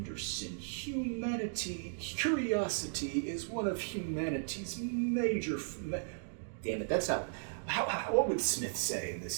curiosity is one of humanity's major... Damn it, that's not... what would Smith say in this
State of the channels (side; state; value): left; silent; digital silence